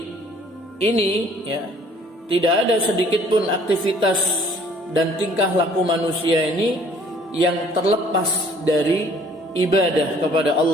ini ya, tidak ada sedikit pun aktivitas dan tingkah laku manusia ini yang terlepas dari ibadah kepada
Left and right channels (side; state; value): both; normal; correlation 0.57